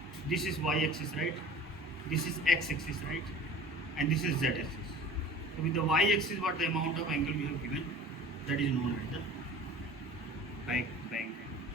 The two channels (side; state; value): both; normal; correlation 0.42